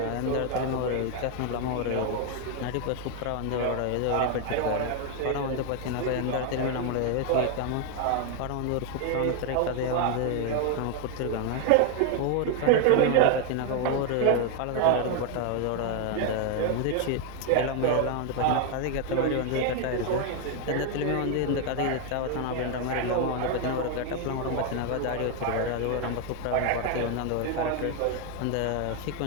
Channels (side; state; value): both; different; correlation 0.01